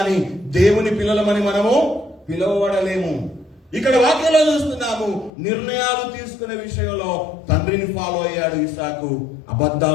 దేవుని పిల్లలమని మనము పిలువబడలేము. ఇక్కడ వాక్యంలో చూస్తున్నాము, నిర్ణయాలు తీసుకునే విషయంలో తండ్రిని ఫాలో అయ్యాడు ఇస్సాకు.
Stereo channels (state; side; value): drops out; right; at 5.3 s